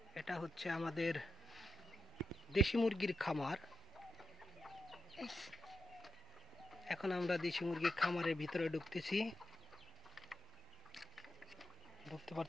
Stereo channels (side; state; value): both; normal; correlation 0.88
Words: এটা হচ্ছে আমাদের দেশি মুরগির খামার। এখন আমরা দেশি মুরগির খামারের ভিতরে ঢুকতেছি। ঢুকতে